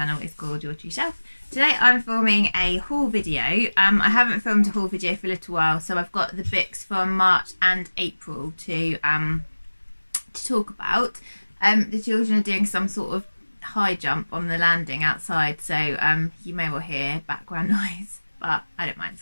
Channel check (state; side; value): inverted; both; correlation -1.00